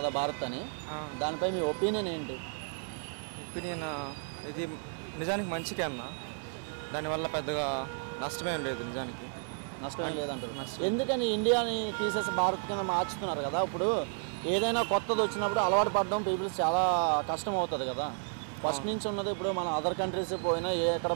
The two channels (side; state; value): left; silent; 56 dB below the other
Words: భారత్ అని, దానిపై మీ ఒపీనియన్ ఏంటి? ఒపీనియన్ ఇది నిజానికి మంచికే అన్న, దానివల్ల పెద్దగా నష్టమేం లేదు. నిజానికి నష్టం లేదంటారు. ఎందుకని ఇండియాని తీసేసి భారత్ కింద మార్చుతున్నారు కదా? ఇప్పుడు ఏదైనా కొత్తది వచ్చినప్పుడు అలవాటు పడడం పీపుల్స్ చాలా కష్టం అవుతుంది కదా. ఫస్ట్ నుంచి ఉన్నది ఇప్పుడు మన అదర్ కంట్రీస్ పోయినా ఎక్కడ